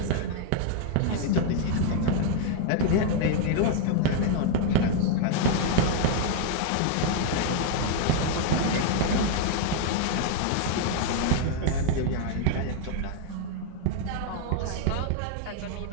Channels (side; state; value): both; different; correlation 0.00